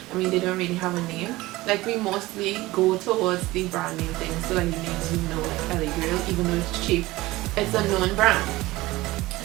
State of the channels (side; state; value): left; quieter; 19.0 dB